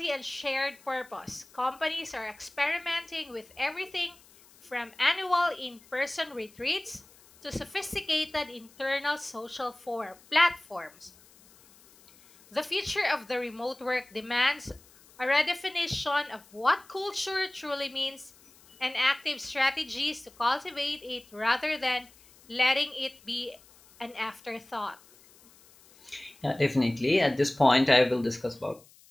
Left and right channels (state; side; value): noise; left; hiss, 26 dB below the sound